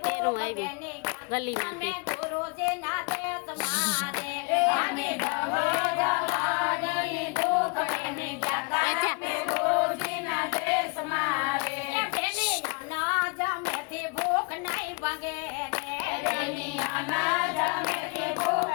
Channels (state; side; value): quieter; right; 31.8 dB